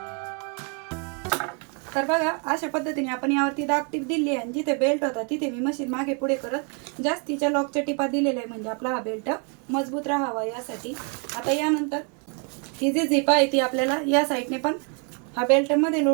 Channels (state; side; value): quieter; left; 37.9 dB